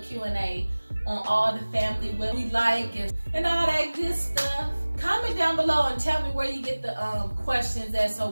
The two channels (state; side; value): inverted; both; correlation -1.00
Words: on all the family, what we like and all that good stuff. Comment down below and tell me where you get the questions at so